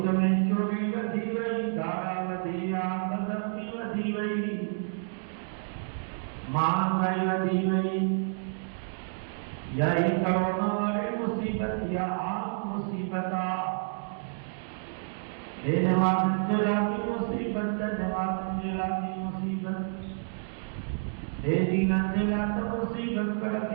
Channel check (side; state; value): left; silent; digital silence